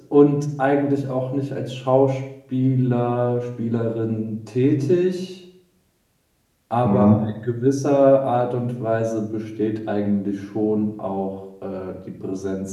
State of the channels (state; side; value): identical; both; correlation 1.00